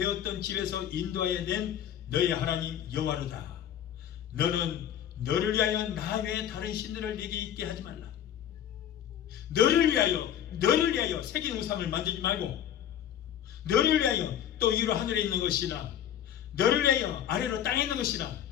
집에서 인도하여 낸 너의 하나님 여호와로다. 너는 너를 위하여 나 외에 다른 신들을 네게 있게 하지 말라. 너를 위하여 새긴 우상을 만들지 말고, 너를 위하여 또 위로 하늘에 있는 것이나 너를 위하여 아래로 땅에 있는 것이나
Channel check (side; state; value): right; quieter; 10.2 dB